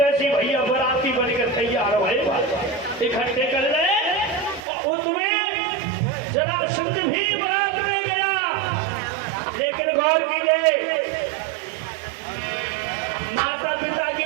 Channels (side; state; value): left; drops out; at 4.6 s